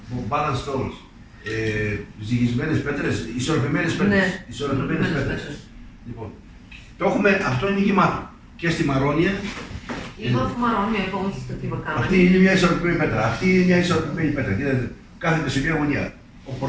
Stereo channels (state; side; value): identical; both; correlation 1.00